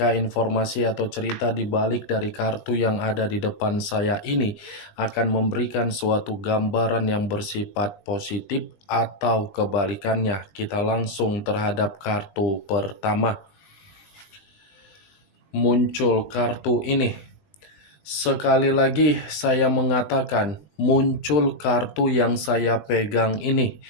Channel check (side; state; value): right; late; 20 ms